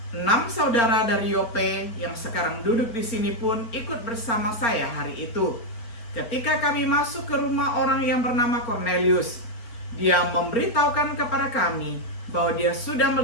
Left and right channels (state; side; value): late; right; 4.3 ms